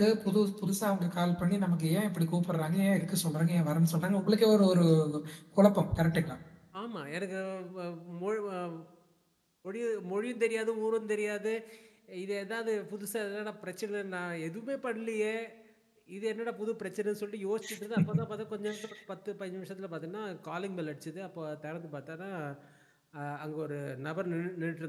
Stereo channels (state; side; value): identical; both; correlation 1.00